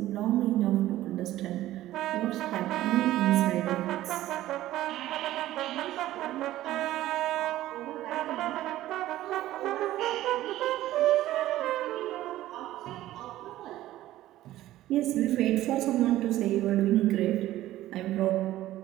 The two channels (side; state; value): left; quieter; 14.8 dB